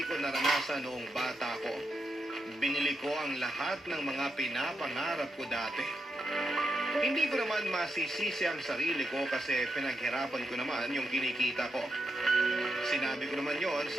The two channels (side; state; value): both; normal; correlation 0.83